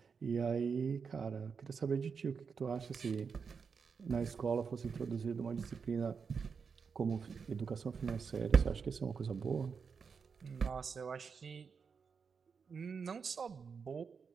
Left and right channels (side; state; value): left; quieter; 5.8 dB